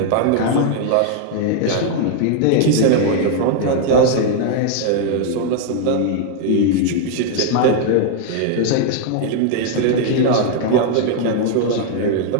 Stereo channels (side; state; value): both; different; correlation 0.00